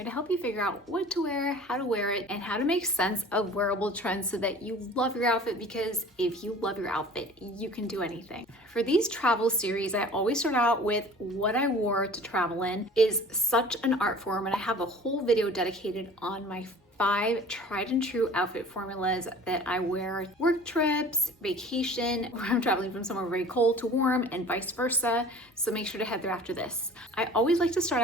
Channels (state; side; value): normal; both; correlation 0.45